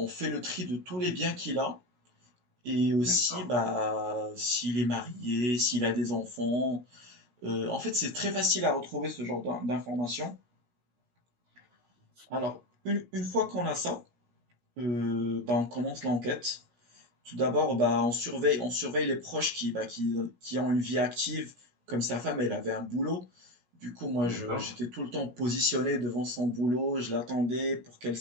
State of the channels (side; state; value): left; late; 17 ms